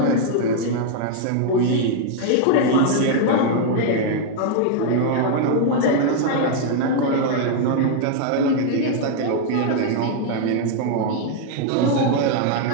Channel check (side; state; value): both; different; correlation 0.00